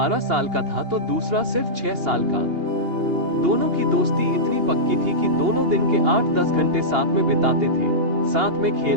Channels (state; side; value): late; left; 2.8 ms